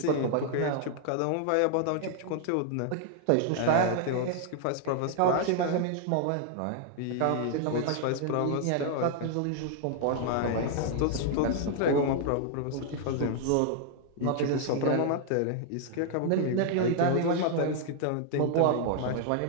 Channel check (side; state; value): both; different; correlation 0.00